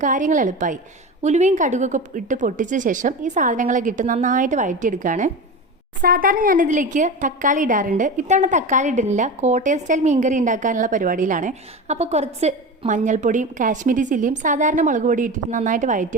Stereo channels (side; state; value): both; normal; correlation 0.26